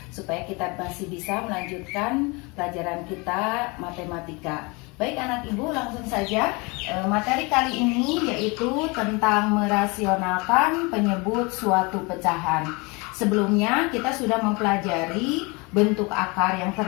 supaya kita masih bisa melanjutkan pelajaran kita matematika. Baik anak Ibu, langsung saja. Materi kali ini yaitu tentang merasionalkan penyebut suatu pecahan. Sebelumnya kita sudah mempelajari bentuk akar yang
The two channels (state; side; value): quieter; right; 27.6 dB